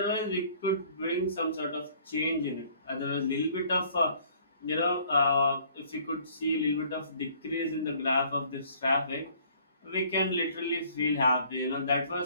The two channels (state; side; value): inverted; both; correlation -0.57